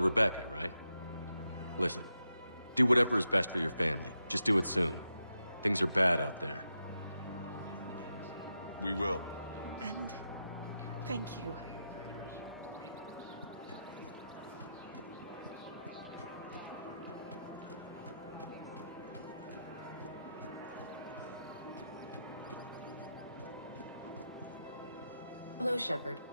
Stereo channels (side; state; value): both; inverted; correlation -0.86